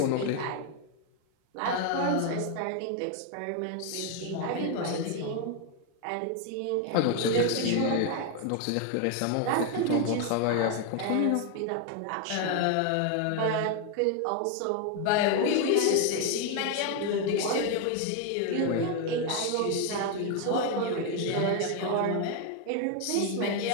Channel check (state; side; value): different; both; correlation 0.01